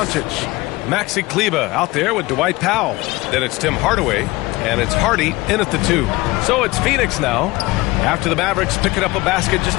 Maxi Kleber out there with Dwight Powell. Then it's Tim Hardaway, and it's Hardy in at the 2. So it's Phoenix now after the Mavericks picking up a basket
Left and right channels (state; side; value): quieter; right; 21.1 dB